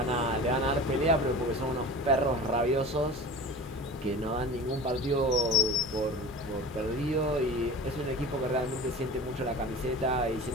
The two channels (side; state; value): both; normal; correlation 0.35